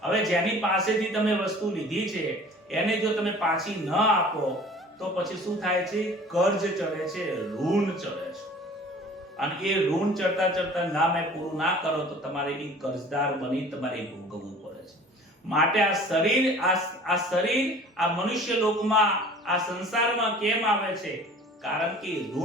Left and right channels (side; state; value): both; normal; correlation 0.46